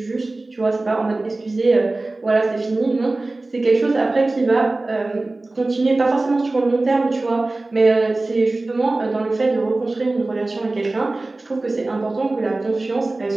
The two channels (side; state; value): left; quieter; 3.1 dB